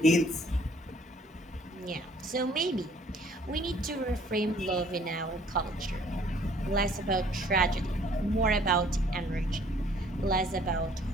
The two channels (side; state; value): both; normal; correlation 0.58